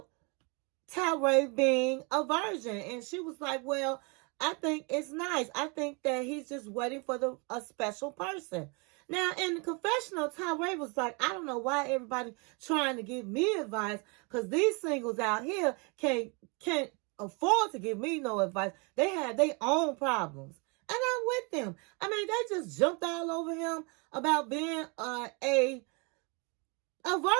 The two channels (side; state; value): left; quieter; 31.7 dB